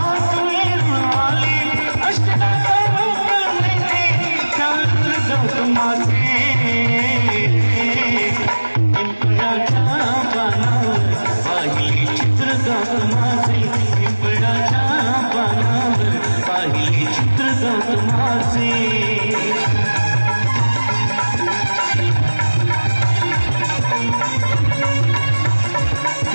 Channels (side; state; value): both; inverted; correlation -1.00